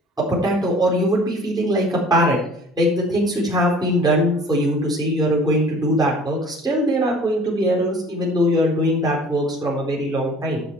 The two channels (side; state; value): both; normal; correlation 0.49